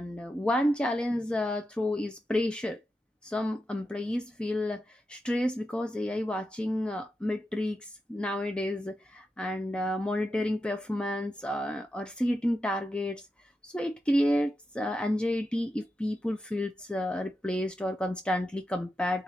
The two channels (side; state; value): both; normal; correlation 0.88